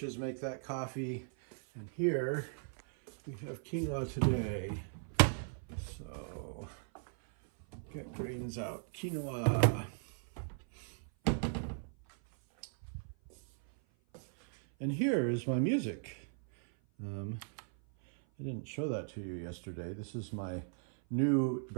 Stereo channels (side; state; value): left; silent; 53 dB below the other